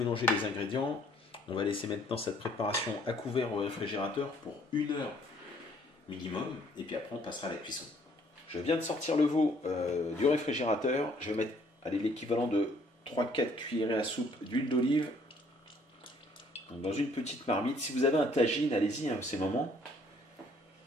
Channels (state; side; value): normal; both; correlation 0.62